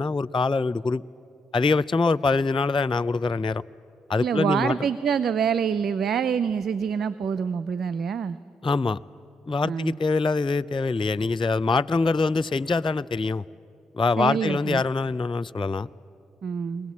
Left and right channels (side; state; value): both; normal; correlation 0.78